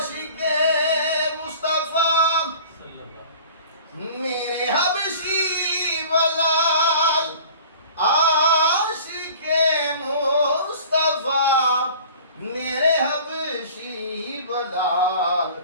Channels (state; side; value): inverted; both; correlation -0.45